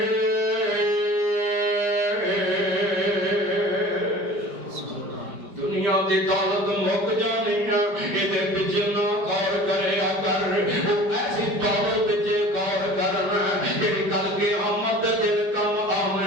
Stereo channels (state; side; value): late; left; 5.0 ms